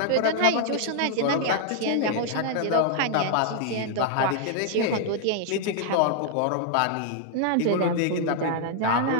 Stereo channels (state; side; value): different; both; correlation 0.00